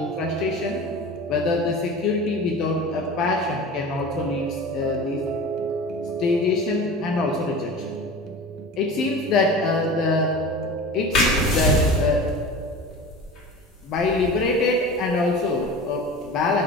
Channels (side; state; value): both; normal; correlation 0.35